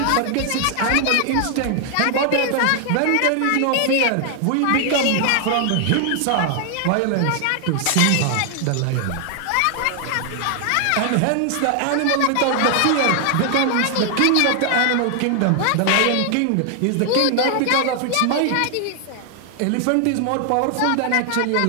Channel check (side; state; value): both; different; correlation 0.00